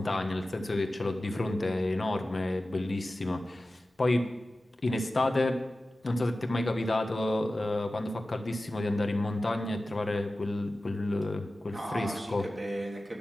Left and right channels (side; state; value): both; normal; correlation 0.95